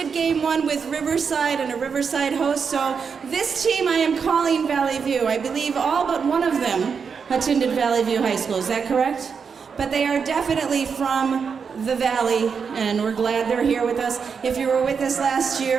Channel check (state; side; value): quieter; left; 6.0 dB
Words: game 1 with Riverside and a Riverside host, so this team I am calling Valley View. I believe all but one of them attended Valley View High School. Is that correct? But they are definitely from the Valley, and we're glad they're here with us. If you were with us last